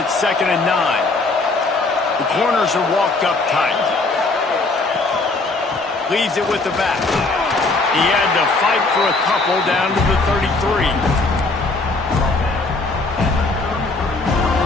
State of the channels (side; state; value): right; quieter; 3.4 dB